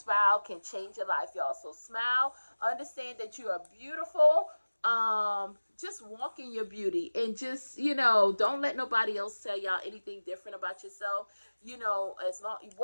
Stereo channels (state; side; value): inverted; both; correlation -1.00